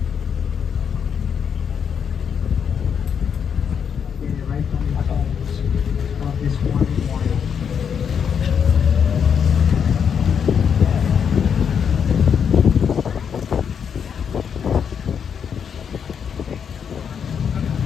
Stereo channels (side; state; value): right; quieter; 7.3 dB